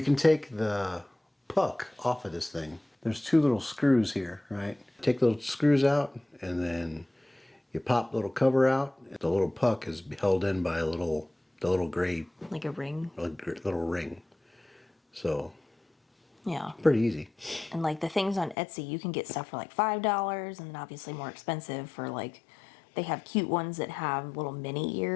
can take the puck off of this thing. There's two little screws here, right? Take the little screws out and then you pop the little cover out. The little puck is held in by the little gray Like a ring. little ring. So Yeah. pretty easy. And like the things on Etsy, you can get stuff for like $5, and then obviously more expensive for like, they have cute ones that have little mini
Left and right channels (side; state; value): right; drops out; at 18.6 s